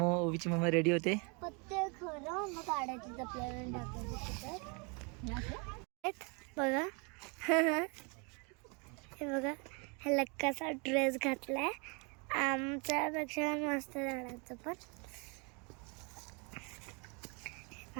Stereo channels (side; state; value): left; quieter; 33.0 dB